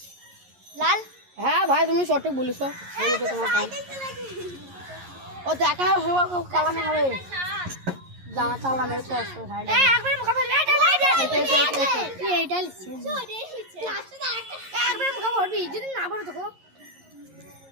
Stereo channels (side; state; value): left; late; 11 ms